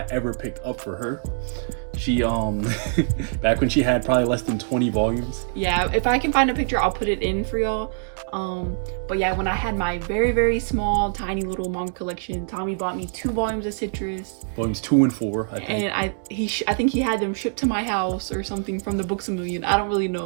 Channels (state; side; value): silent; left; 63 dB below the other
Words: ever picked up for her. She back when she had probably less than 20 volumes. Yeah, if I can find a picture, I'll put it in for y'all. But yeah, when I had my very, very small, tiny little manga collection, Tommy bought me 2 volumes of Citrus. Volumes 2 and 4, I think. And I think he had them shipped to my house or something from the Books A Million. I don't really